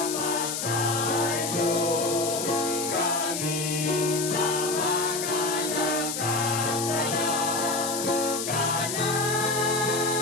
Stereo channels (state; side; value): noise; left; hiss, 3 dB below the sound